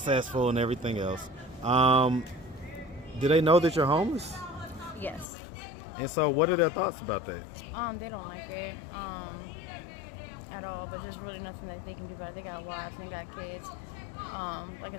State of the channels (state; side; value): drops out; right; at 5.2 s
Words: and everything else. Do they know that you're homeless? Yes. And so, what are their thoughts about that? They don't like it at all, but there's really nothing that they can do about it. They got wives and they got kids. Like I